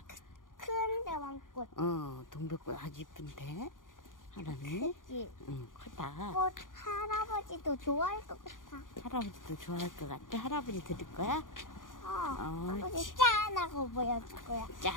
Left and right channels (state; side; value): late; right; 0.89 ms